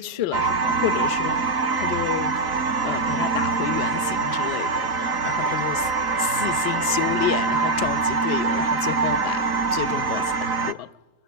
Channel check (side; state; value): left; late; 4.0 ms